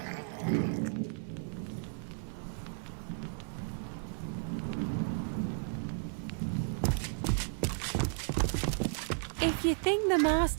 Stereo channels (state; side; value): silent; left; 55 dB below the other